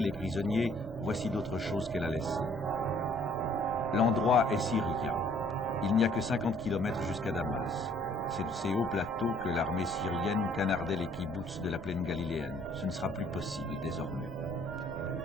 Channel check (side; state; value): both; normal; correlation 0.60